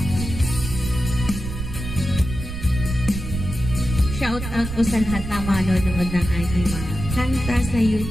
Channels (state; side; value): noise; right; rumble, 6 dB below the sound